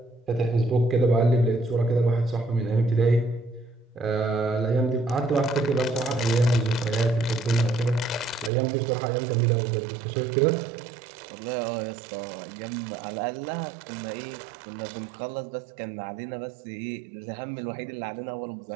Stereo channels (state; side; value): drops out; left; at 8.5 s